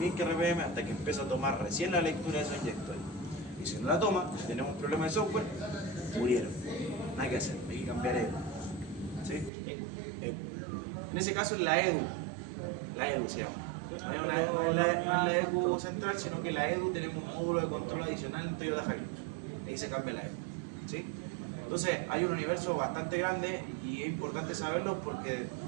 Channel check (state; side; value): drops out; left; at 9.5 s